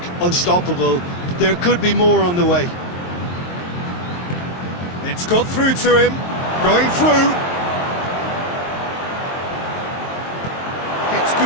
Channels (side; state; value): right; late; 23 ms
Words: unstoppable. There could be more on the way. It's got through to him. Going through. Gets